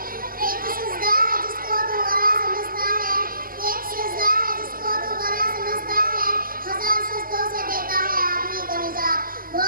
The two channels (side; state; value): left; late; 0.41 ms